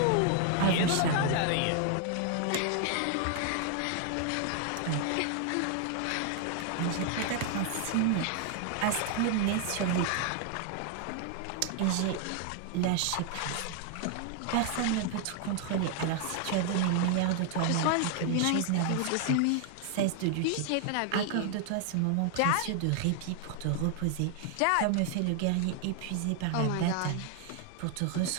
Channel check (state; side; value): different; both; correlation 0.00